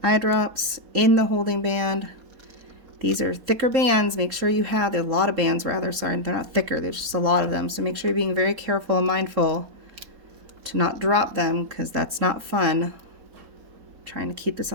Eye drops in the holding band. These are thicker bands. Make sure you have, there are a lot of bands rather, sorry, they're not thicker, there's just a lot of them. So make sure you're being very careful and mindful to not drop them because that's not fun. Trying to keep this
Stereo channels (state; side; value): late; left; 3.7 ms